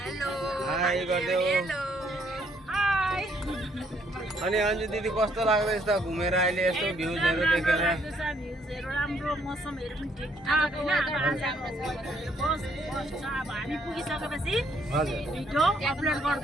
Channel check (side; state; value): both; normal; correlation 0.68